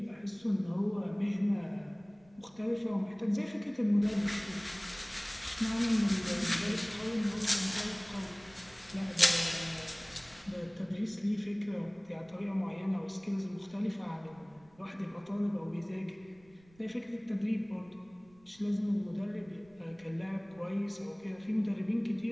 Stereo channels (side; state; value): right; noise; rumble, 28 dB below the sound